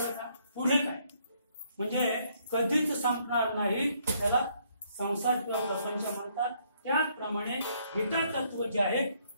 पुढे काय? म्हणजे कधीच संपणार नाही. त्याला संसार किंवा प्रपंच म्हणतात. त्याचप्रमाणे गीता तत्व जे आहे,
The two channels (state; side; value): inverted; both; correlation -0.69